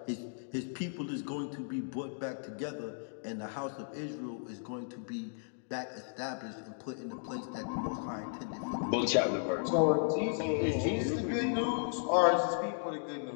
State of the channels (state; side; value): silent; right; digital silence